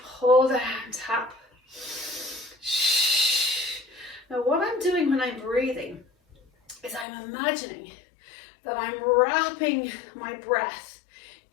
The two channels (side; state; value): right; drops out; at 7.1 s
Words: pull down, tap. Now what I'm doing when I'm breathing is I'm imagining that I'm wrapping my breath